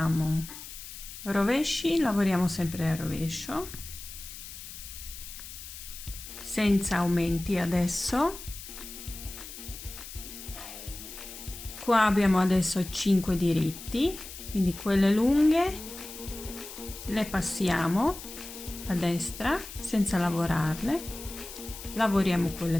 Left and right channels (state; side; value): noise; left; hiss, 12 dB below the sound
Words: rovesci, lavoriamo sempre a rovescio senza aumenti adesso. Qua abbiamo adesso 5 diritti, quindi quelle lunghe le passiamo a destra senza lavorarle, lavoriamo quelle